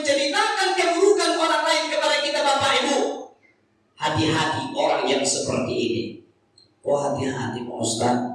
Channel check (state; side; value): identical; both; correlation 1.00